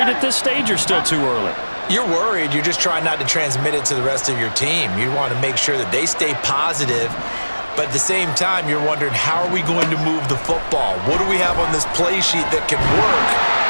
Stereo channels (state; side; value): inverted; both; correlation -1.00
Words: at this stage or still too early? You're worried. You're just trying not to transmit it to the rest of your team. You want to make sure that they stay positive. But at the same time, you're wondering, how are we going to move the football? What do we have on this play sheet that can work?